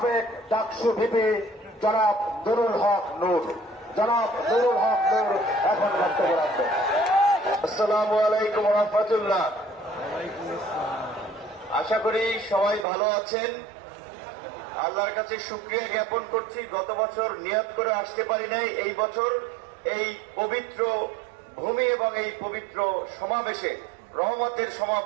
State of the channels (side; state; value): left; drops out; at 12.9 s